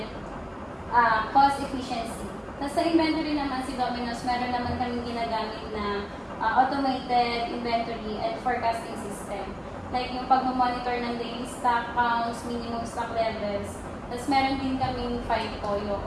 cost efficiency. Tapos sa inventory naman si Domino's, meron naman kaming ginagamit na automated inventory and forecasting system. Like yung pag-monitor ng daily stock counts, minimum stock levels. Tapos meron din kaming FIFO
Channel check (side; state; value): both; identical; correlation 1.00